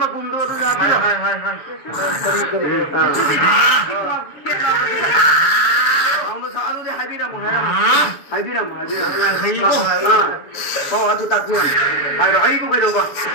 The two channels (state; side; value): late; right; 7.0 ms